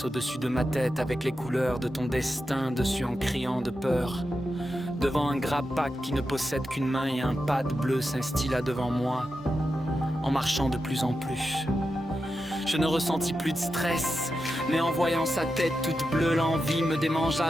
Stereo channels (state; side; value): normal; both; correlation 0.89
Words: au-dessus de ma tête avec les couleurs de ton destin dessus en criant de peur. Devant un grappac qui ne possède qu'une main et un pad bleu s'instilla devant moi, en marchant de plus en plus. Je ne ressentis plus de stress, mais en voyant sa tête toute bleue, l'envie me